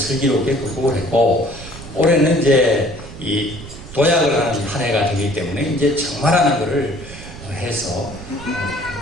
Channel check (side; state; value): right; noise; rumble, 14 dB below the sound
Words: 극복을 했고, 올해는 이제 이 도약을 하는 한 해가 되기 때문에 이제 정말하는 거를 해서